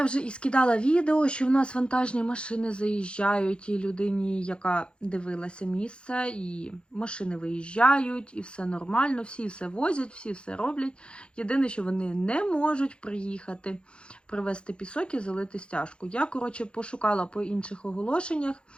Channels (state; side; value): late; right; 0.056 ms